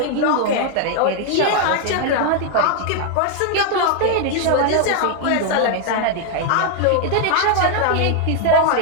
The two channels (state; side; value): different; both; correlation 0.00